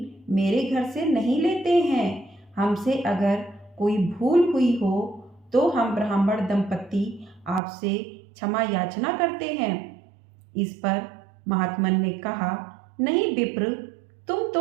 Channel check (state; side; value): drops out; left; at 7.6 s